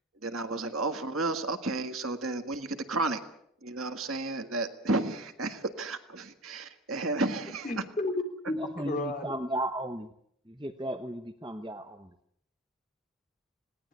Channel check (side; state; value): both; normal; correlation 0.33